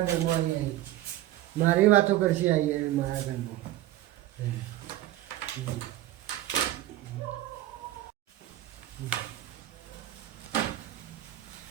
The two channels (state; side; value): quieter; left; 14.7 dB